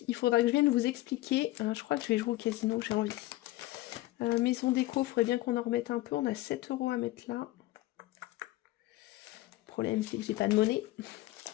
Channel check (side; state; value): right; quieter; 17.6 dB